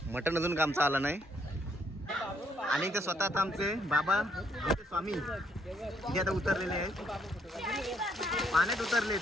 मटण अजून आमचं आलं नाही. आणि ते स्वतः आता आमचे बाबा आमचे स्वामी इथे आता उतरलेले आहेत, पाण्यात उतरलेत.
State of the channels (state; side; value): normal; both; correlation 0.71